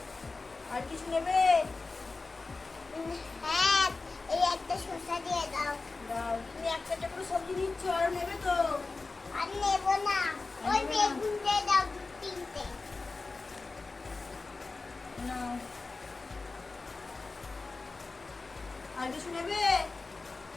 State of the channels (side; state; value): right; quieter; 3.8 dB